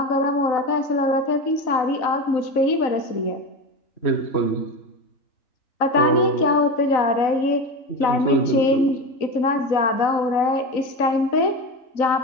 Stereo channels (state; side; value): late; right; 3.9 ms